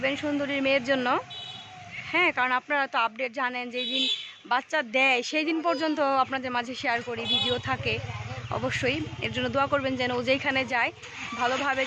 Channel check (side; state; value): both; identical; correlation 1.00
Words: সুন্দরীর মেয়ের জন্য। হ্যাঁ, কারণ আপনারা তো আপডেট জানেন, যেই দিন বাচ্চা দেয় সেই দিন পর্যন্ত আপনাদের মাঝে শেয়ার করি, ভিডিও থাকে। অবশ্যই এর জন্য দোয়া করবেন যেন ও যেখানে যায় ভালোভাবে